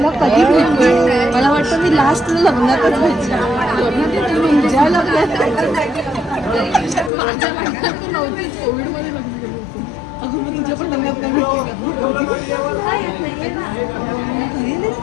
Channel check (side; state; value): right; drops out; at 7.1 s